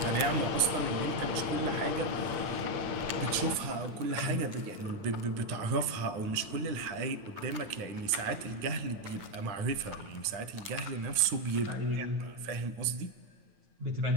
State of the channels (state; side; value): late; left; 9.8 ms